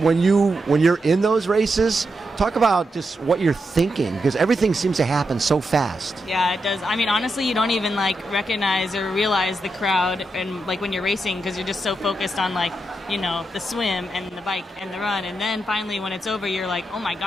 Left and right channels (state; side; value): normal; both; correlation 0.85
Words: when you're in those races, talk about just what you're thinking, because everything seems to happen so fast. Yeah, it does. I mean, honestly, you don't even like recognize or realize the crowd, and like when you're racing, because you're just so focused on like, you know, the swim and the bike and the run, and then finally when it's over, you're like, oh my